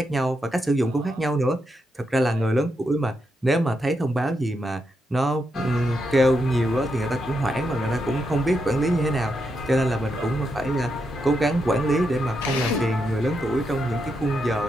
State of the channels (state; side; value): normal; both; correlation 0.83